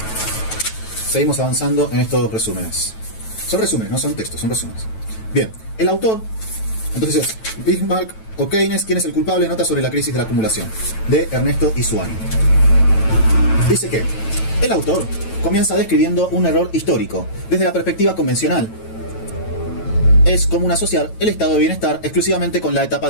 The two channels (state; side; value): late; right; 9.1 ms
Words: seguimos avanzando en estos resúmenes. Son resúmenes, no son textos, son resúmenes. Bien, el autor, entonces es Bismarck o Keynes, ¿quién es el culpable? Nota sobre la crisis de la acumulación, de Ernesto Isuani. Dice que el autor comienza describiendo un error histórico. Desde la perspectiva convencional, es común asociar el estado de bienestar exclusivamente con la etapa